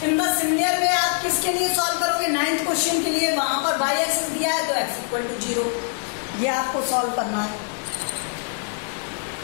in the similar में आप किसके लिए सॉल्व करोगे, 9th क्वेश्चन के लिए, वहां पर y एक्सिस दिया है तो x इक्वल टू 0, ये आपको सॉल्व करना है।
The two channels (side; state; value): right; silent; 56 dB below the other